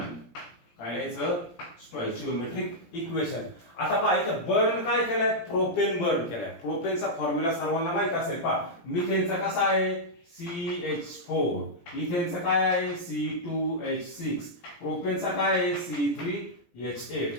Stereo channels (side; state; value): right; late; 17 ms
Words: काय लिहायचं स्टॉइचियोमेट्रिक इक्वेशन. आता पहा इथं बर्न काय केलंय प्रोपेन बर्न केलाय. प्रोपेनचा फॉर्म्युला सर्वांना माहित असेल मिथेनचा कसा आहे CH4 इथेनचा काय आहे C2H6 प्रोपेनचा काय आहे C3H8